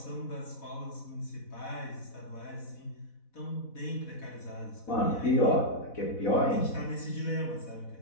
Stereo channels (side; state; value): right; late; 4.1 ms